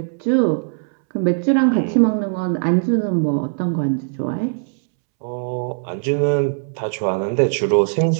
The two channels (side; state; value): left; silent; 66 dB below the other